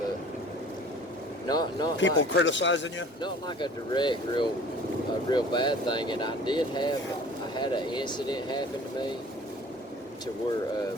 not people like, criticizing you? not like a direct, real bad thing. And I had an incident happen to me to where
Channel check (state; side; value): normal; both; correlation 0.48